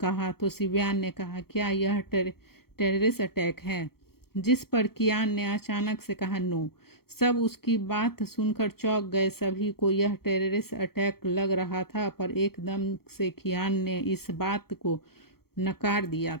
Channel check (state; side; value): late; right; 0.94 ms